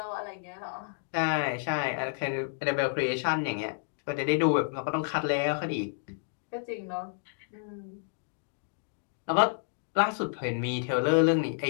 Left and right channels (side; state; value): right; silent; digital silence